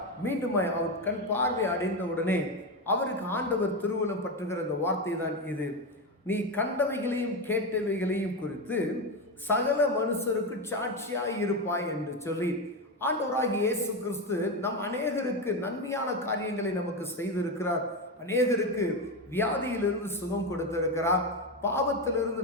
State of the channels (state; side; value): normal; both; correlation 0.14